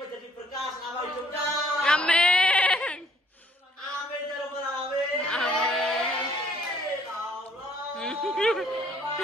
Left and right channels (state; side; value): normal; both; correlation 0.62